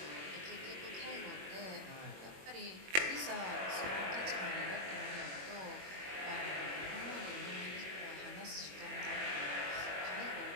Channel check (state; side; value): late; left; 21 ms